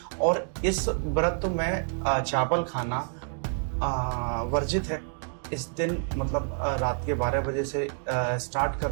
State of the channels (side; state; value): left; silent; 59 dB below the other